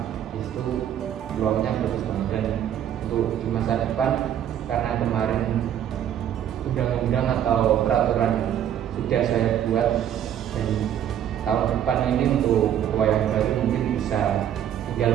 Di situ peluangnya bagus banget. Dan untuk di masa depan, karena kemarin undang-undang atau peraturan sudah saya buat, dan tahun depan ini untuk ketua yang baru mungkin bisa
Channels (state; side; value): quieter; left; 10.2 dB